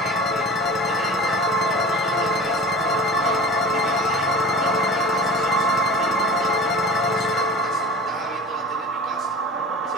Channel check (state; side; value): normal; both; correlation 0.37